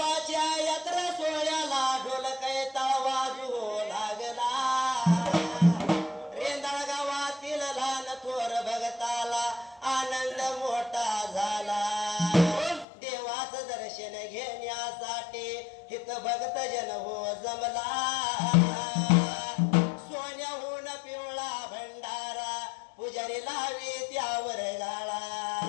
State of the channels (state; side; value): drops out; right; at 12.9 s